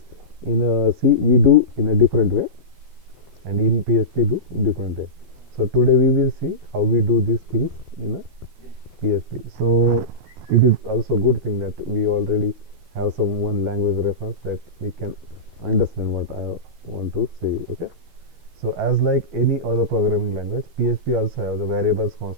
in a C we do in a different way, and in PHP do different way. So today we will see how we do these things in a PHP. So it is also good thing that we already have some one language reference that we can understand what I want to say. Okay. So as like any other programming language, PHP also have the variables,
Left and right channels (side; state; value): left; late; 12 ms